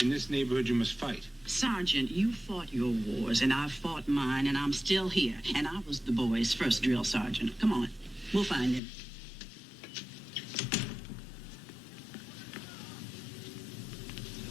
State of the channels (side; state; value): right; drops out; at 8.8 s